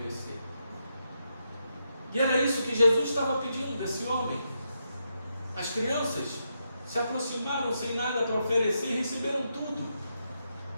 E era isso que Jesus estava pedindo desse homem. As crianças se aproximaram sem nada para oferecer e receberam tudo.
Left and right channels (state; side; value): inverted; both; correlation -0.83